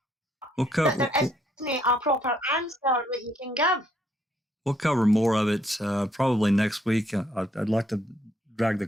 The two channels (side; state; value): both; normal; correlation 0.70